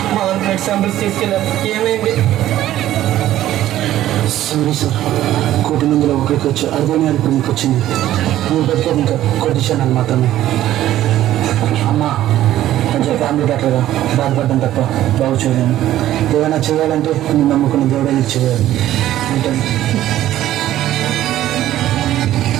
చంపులు తీసుకెళ్ళారు. ఏమైంది? సారీ సార్, కోటి మందిలో ఒకరికి వచ్చి అర్థమే అనుకుని మీకు వచ్చింది. నువ్వు బతికేది ఇంకా కొట్టించాను మాత్రమే. అమ్మా కొంచెం ఫ్యామిలీ డాక్టర్గా బాధపడ్డం తప్ప బాగు చేయలేను. ఏదైనా చేయాలంటే నేను నమ్ముకున్న దేవుడే నీకు చేయాలి. ఉంటాను.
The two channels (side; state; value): left; quieter; 13.4 dB